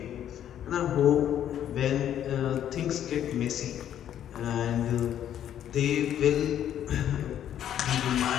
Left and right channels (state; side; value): quieter; right; 10.5 dB